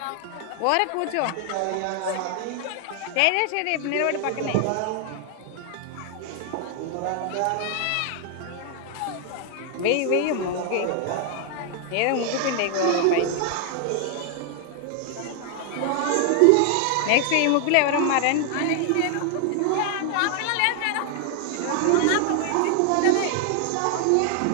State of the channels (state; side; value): different; both; correlation 0.00